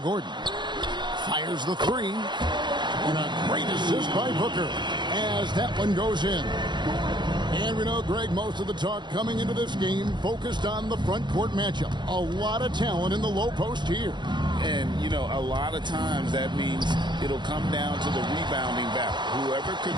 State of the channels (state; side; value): late; left; 0.22 ms